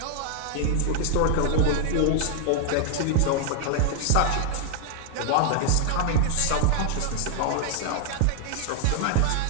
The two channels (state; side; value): different; both; correlation 0.00